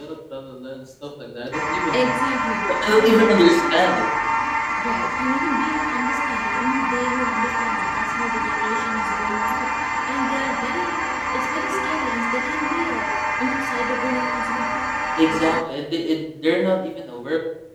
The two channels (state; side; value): identical; both; correlation 1.00